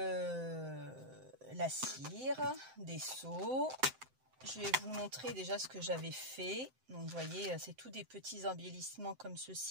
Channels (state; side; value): late; left; 7.8 ms